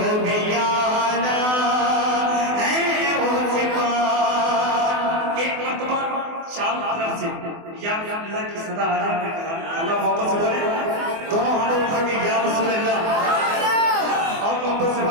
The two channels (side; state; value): left; late; 24 ms